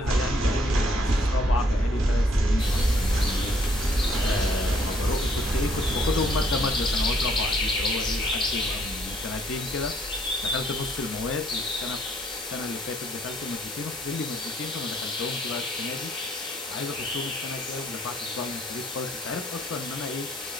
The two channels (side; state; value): both; normal; correlation 0.65